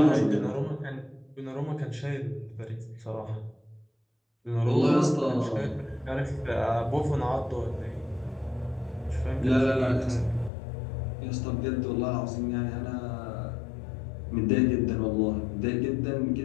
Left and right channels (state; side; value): drops out; right; at 10.5 s